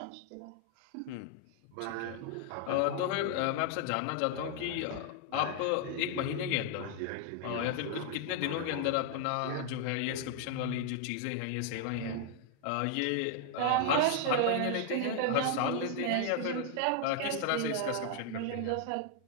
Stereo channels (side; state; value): both; different; correlation 0.00